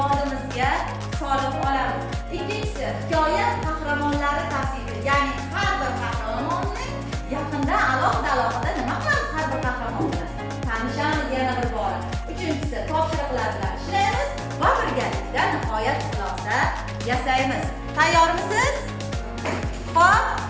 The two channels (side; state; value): both; identical; correlation 1.00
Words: solib olamiz. Ikkinchisi hikoya qahramonlari tavsifi, ya'ni har bir qahramonning yaqinda alohida nima qilamiz har bir qahramon bilan tanishamiz yana bir bora. Uchinchisi topshiriqlar bilan ishlaymiz va birgalikda nihoyat xulosa yasaymiz. Tayyormisiz? Xo'p,